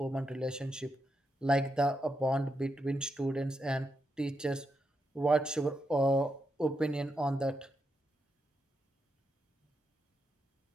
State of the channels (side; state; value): both; normal; correlation 0.84